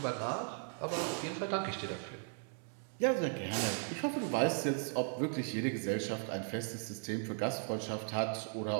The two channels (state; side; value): silent; left; 53 dB below the other